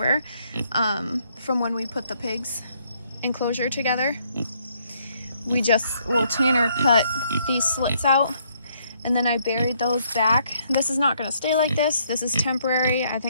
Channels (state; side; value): inverted; both; correlation -0.70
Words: from when we put the pigs enclosure together. Tanner cut these slits out, and then I buried those back. This is not gonna stay like this. This is temporary. I